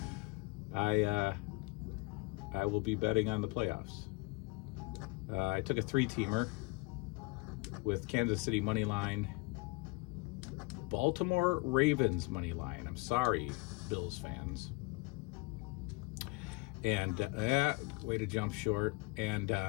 I will be betting on the playoffs. I took a 3-teamer with Kansas City money line, Baltimore Ravens money line. I'm sorry, Bills fans. And way to jump short. And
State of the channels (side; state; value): right; quieter; 26.3 dB